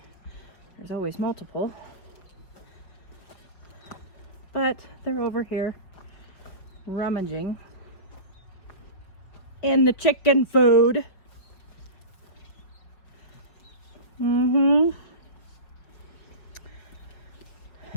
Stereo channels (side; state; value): right; late; 5.1 ms